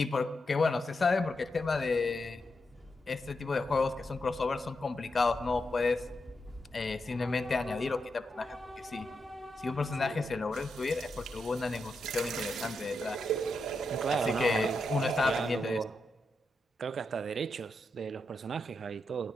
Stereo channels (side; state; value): both; normal; correlation 0.85